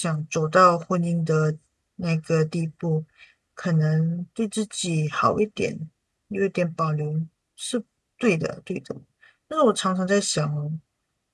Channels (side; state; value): both; identical; correlation 1.00